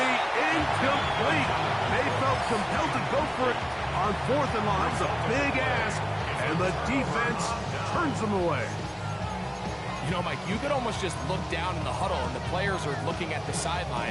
incomplete. They felt compelled to go for it on 4th and long. It's a big ask, and the defense turns them away. You know, Mike, you could almost just look down in the huddle, and the players are looking at the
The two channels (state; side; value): identical; both; correlation 1.00